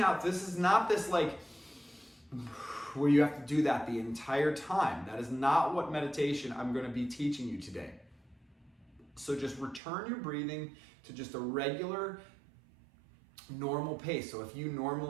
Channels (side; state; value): left; drops out; at 9.8 s